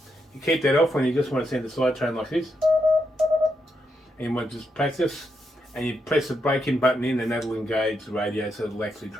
You keep that off when you just want to send a side train like this, and you want to just practice, and you press the break-in button in, and that'll engage the radio so it'll actually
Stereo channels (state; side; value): normal; both; correlation 0.82